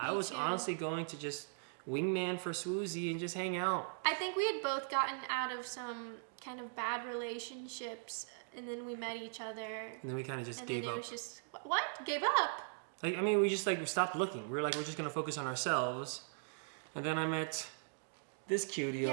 was honestly going to just wingman for Swoozy and just hang out. I think we had both gotten out of some kind of bad relationships, and then we met each other. And then we kind of just gave up. And then it was just, what? Gave up? Like, I mean, we just like stopped looking. We were like, we're just gonna focus on ourselves. And then I met this cutie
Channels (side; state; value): left; silent; digital silence